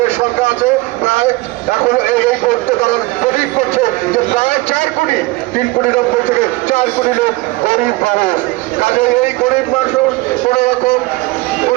সংখ্যা আছে প্রায়, এখন এই করতে তারা প্রতীক করছে যে প্রায় 4 কোটি, 3 কোটি 90 থেকে 4 কোটি লোক গরিব মানুষ। কাজে এই গরিব মানুষ কোন রকম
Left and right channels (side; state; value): left; quieter; 21.6 dB